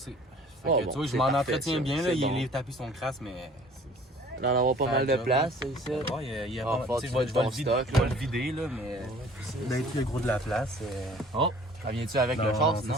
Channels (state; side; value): normal; both; correlation 0.51